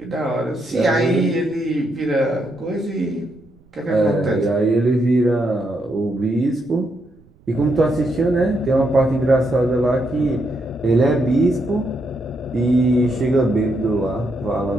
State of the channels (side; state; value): right; noise; rumble, 29 dB below the sound